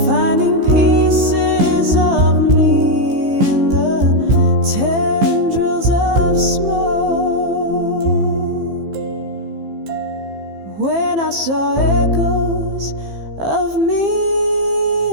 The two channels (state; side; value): late; left; 15 ms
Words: finding pieces of me in the tendrils of smoke. When I saw echoes of me